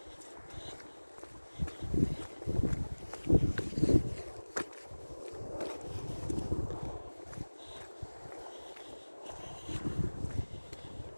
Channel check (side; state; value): both; inverted; correlation -1.00